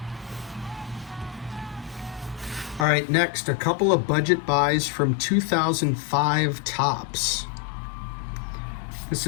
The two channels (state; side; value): drops out; right; at 2.9 s